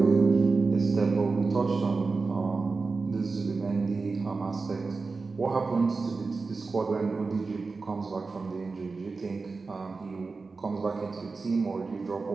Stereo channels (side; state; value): left; quieter; 4.2 dB